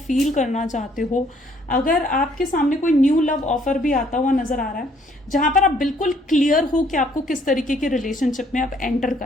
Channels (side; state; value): both; normal; correlation 0.64